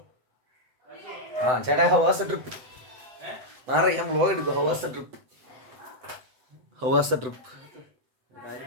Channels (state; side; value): late; left; 7.9 ms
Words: ചേട്ടാ, ഹൗ വാസ് ദ ട്രിപ്പ്? മാറി, ഞാൻ വ്ലോഗ് എടുക്കും. How was the trip?